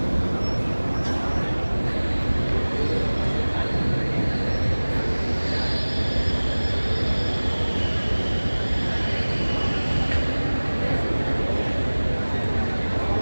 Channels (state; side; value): inverted; both; correlation -1.00